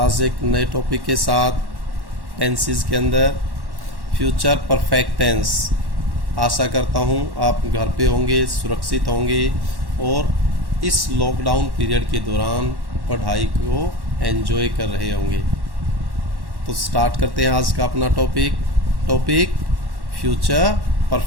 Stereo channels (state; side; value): late; left; 1.1 ms